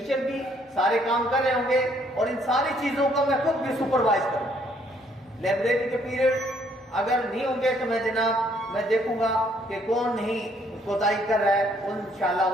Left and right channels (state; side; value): normal; both; correlation 0.66